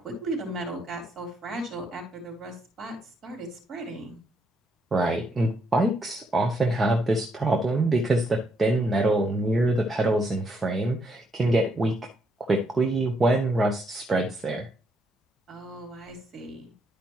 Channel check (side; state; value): both; normal; correlation 0.75